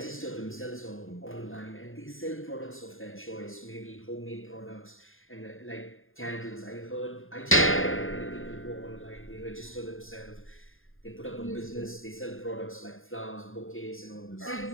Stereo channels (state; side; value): late; right; 0.59 ms